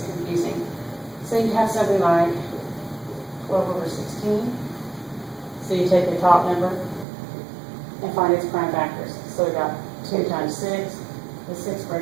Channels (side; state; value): left; drops out; at 7.1 s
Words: confusing. So you have something like 12 over 16. So you take the top number and find its prime factors. So we got 2 times 6. The 6